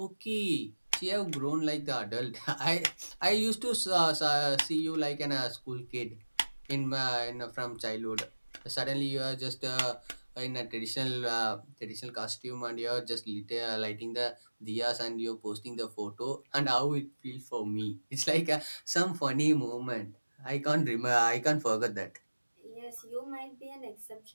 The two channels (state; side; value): inverted; both; correlation -1.00